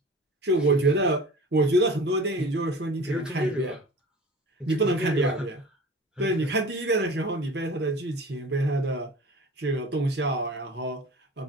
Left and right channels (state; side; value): normal; both; correlation 0.40